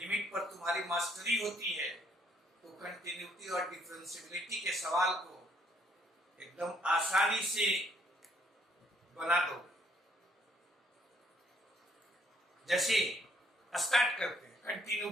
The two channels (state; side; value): normal; both; correlation 0.67